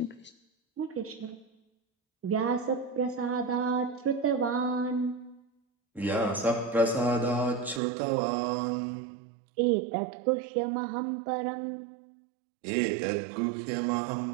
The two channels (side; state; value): left; drops out; at 7.8 s